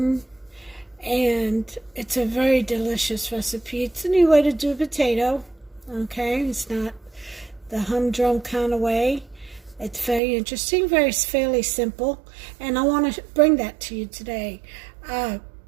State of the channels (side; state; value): left; drops out; at 10.2 s